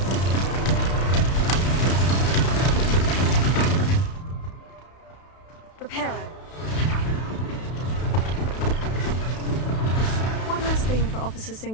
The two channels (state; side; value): late; right; 32 ms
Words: Reparo. One less thing for Officer